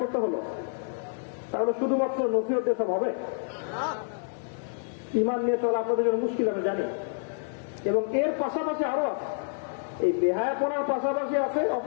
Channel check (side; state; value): right; silent; 58 dB below the other